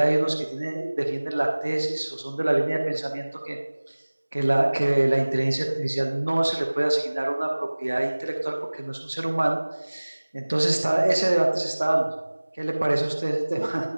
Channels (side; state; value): both; inverted; correlation -1.00